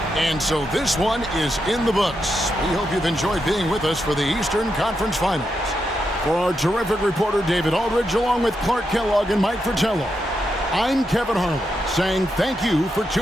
And so this one is in the books. We hope you've enjoyed being with us for the Eastern Conference Finals. For our terrific reporter, David Aldridge, along with Clark Kellogg and Mike Fratello, I'm Kevin Harlan, saying thank you for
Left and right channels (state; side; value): normal; both; correlation 0.84